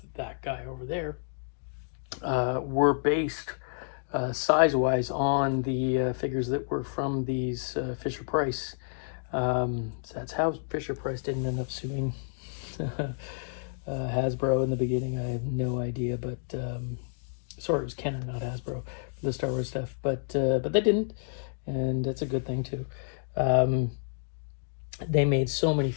that guy over there, were based size-wise on the figures that were from these Fisher Price. So that's how Fisher Price didn't end up suing Hasbro in the beginning. I have no idea, but sorry, it was Kenner, not Hasbro, for the Star Wars stuff. But they didn't, and that's a good thing too. They made so many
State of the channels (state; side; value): silent; right; digital silence